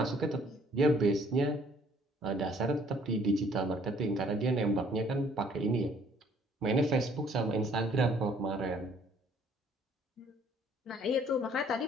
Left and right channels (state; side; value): normal; both; correlation 0.60